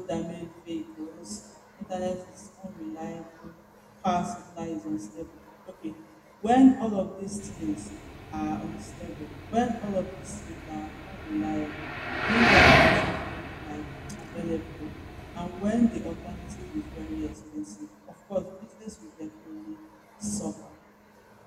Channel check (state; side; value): identical; both; correlation 1.00